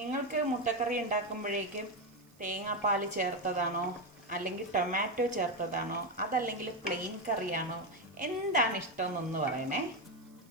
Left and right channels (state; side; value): noise; right; hiss, 30 dB below the sound